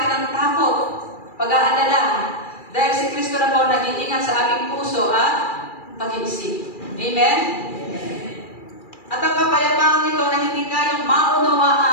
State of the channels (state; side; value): late; right; 2.4 ms